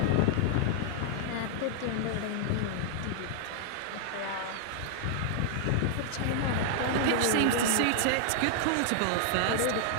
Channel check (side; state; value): both; different; correlation 0.00